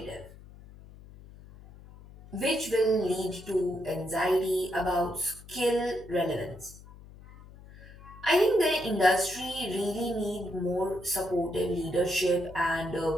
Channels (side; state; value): left; noise; hum, 19 dB below the sound